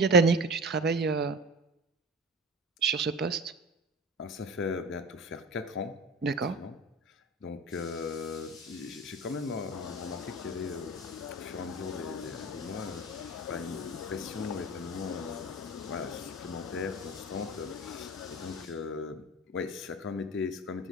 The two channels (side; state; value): both; normal; correlation 0.33